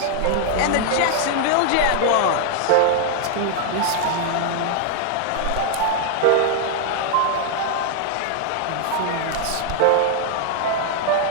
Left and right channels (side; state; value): both; different; correlation 0.00